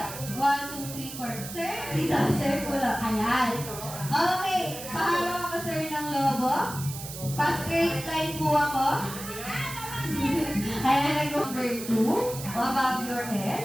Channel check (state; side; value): noise; right; hiss, 10 dB below the sound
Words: 1, 2, 3, 4? Sir, dito, sir, kulang. Ayan. Okay, pahalo ako sir ng lobo. Pa-straight line po ako. Ayan, number 2. Above your